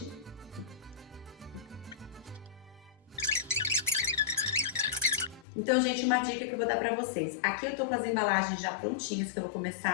Então, gente, uma dica que eu vou dar pra vocês. Aqui eu tô com as embalagens já prontinhas, que eu vou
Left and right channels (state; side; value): drops out; right; at 5.5 s